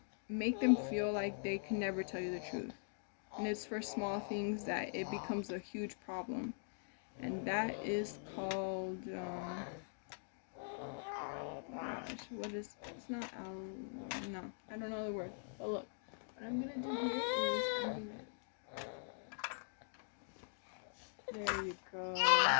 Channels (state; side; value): silent; right; digital silence